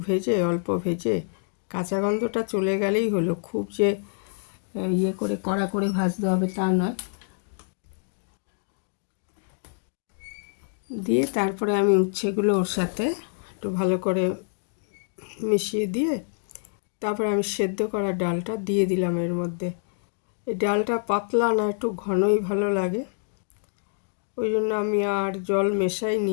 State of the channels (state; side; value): silent; right; digital silence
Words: ভেজে অল্প ভেজে কাঁচা গন্ধটা চলে গেলেই হলো। খুব যে করে কড়া করে ভাজতে হবে তা নয়। দিয়ে তারপরে আমি উচ্ছেগুলো ওর সাথে একটু ভালো করে মিশিয়ে দিয়ে তারপরে আমি সেদ্ধ করা ডালটা দিয়ে দিলাম এর মধ্যে। এই ডালটা পাতলা না, একটু ঘনই ভালো লাগে, ওই জন্য আমি আর জল মেশাইনি